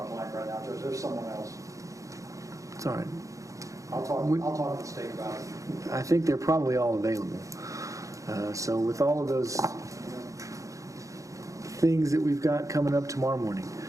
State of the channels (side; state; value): left; late; 0.16 ms